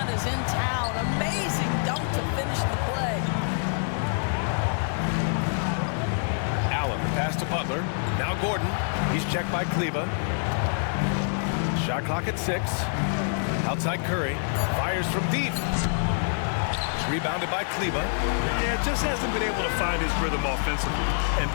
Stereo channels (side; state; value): right; silent; digital silence